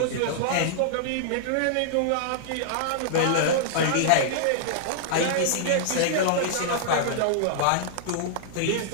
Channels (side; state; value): both; different; correlation -0.01